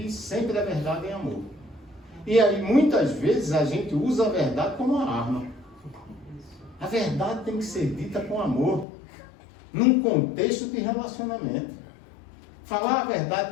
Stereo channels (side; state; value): right; drops out; at 8.8 s